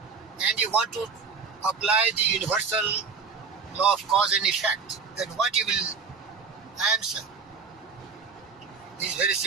and you want to apply the universal law of cause and effect, then what you will answer is very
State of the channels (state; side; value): quieter; left; 5.2 dB